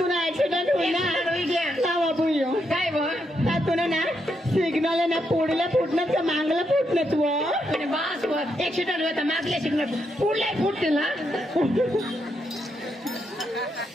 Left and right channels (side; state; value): both; normal; correlation 0.80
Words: एक्सिडेंट काय तुला ना सिग्नल ना पुढल्या फुटण्यात का मागला फुटण्यात बस एक्सिडेंट होता मागल्या सिग्नल पुढल्या फुटते ना